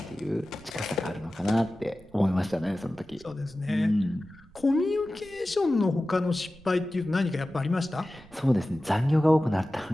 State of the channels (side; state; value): right; noise; rumble, 25 dB below the sound